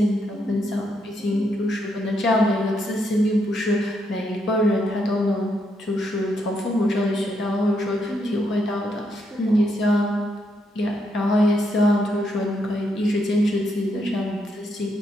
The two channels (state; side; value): normal; both; correlation 0.78